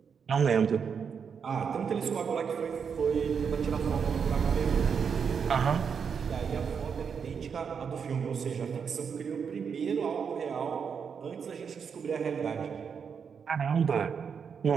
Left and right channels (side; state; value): left; quieter; 6.6 dB